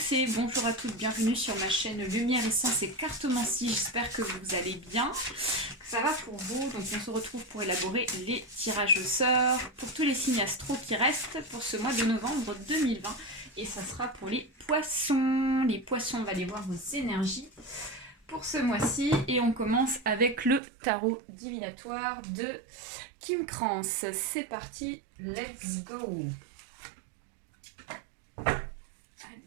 et bonjour à toutes, bienvenue sur ma chaîne Lumière, Essence et Cartomancie. J'espère que vous allez bien, que ça va pour vous. Donc on se retrouve pour élaborer les tirages au sort pour tous les signes astro qui restent pour ce mois de novembre 2020. Et ça sera pour les poissons. Les poissons, on va aller voir vos énergies pour ce mois-ci. Et on commence avec le tarot divinatoire de Kim Krans. C'est parti, let's go!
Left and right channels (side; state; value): left; drops out; at 20.6 s